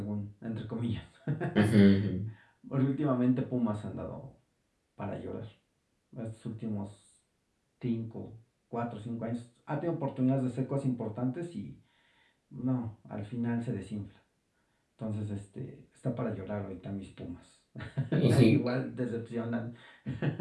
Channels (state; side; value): identical; both; correlation 1.00